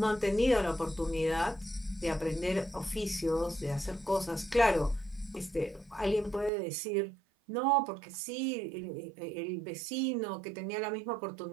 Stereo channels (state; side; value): drops out; left; at 6.5 s